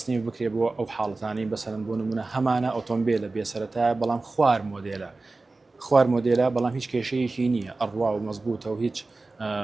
بکرێت بۆ ئەو حاڵەتانی بەسەرەن بۆ نمونە هەمانە ئۆتۆمبیلە بێسەرەتایە بەڵام خوار مۆدێلە بەڵام هیچ کێشەیەکی نییە ئەڕوا و مەزبوطە و هیچ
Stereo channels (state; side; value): quieter; left; 3.4 dB